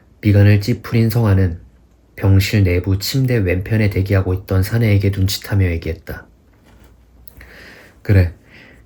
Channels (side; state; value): both; identical; correlation 1.00